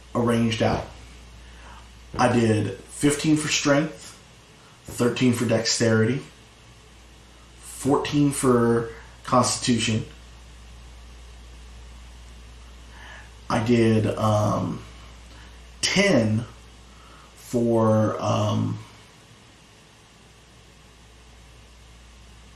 arranged out. I did 15 for strength, 13 for dexterity, 14 for constitution. I did 10 for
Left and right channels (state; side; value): identical; both; correlation 1.00